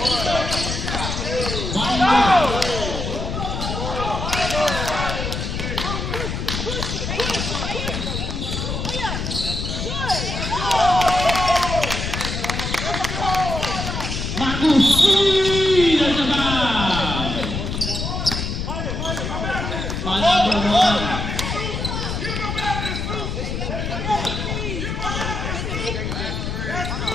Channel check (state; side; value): noise; left; rumble, 3 dB below the sound